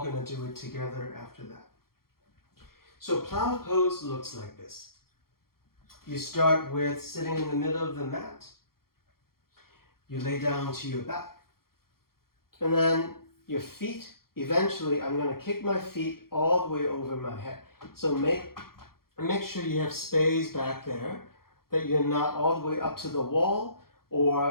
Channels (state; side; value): late; right; 0.93 ms